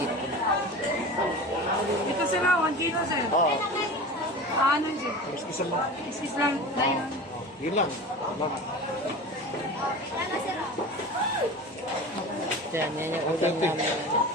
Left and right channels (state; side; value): normal; both; correlation 0.33